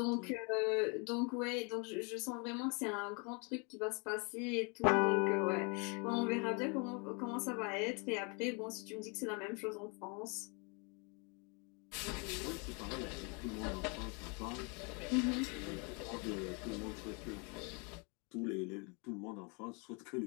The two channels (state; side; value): quieter; right; 33.4 dB